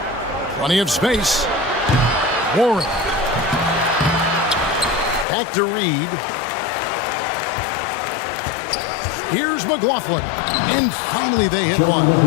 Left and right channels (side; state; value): right; drops out; at 5.2 s